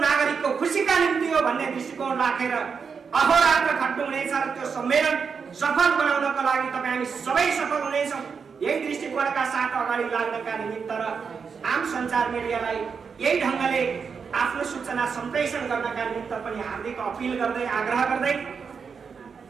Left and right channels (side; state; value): left; quieter; 5.9 dB